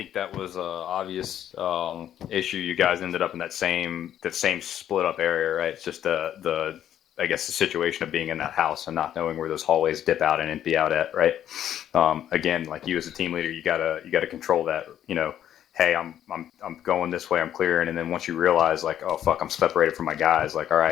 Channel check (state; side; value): quieter; right; 10.7 dB